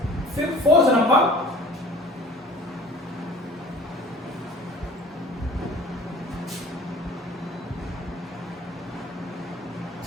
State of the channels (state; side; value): normal; both; correlation 0.47